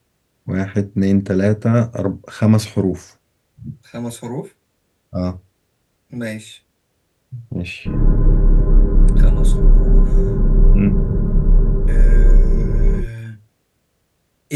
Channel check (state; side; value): identical; both; correlation 1.00